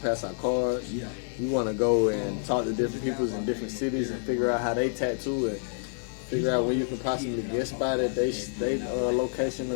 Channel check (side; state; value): right; silent; digital silence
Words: pass out cards. You want to go and talk to different people in different cities and figure out how they tattoo and figure out where you can possibly get spot at they location or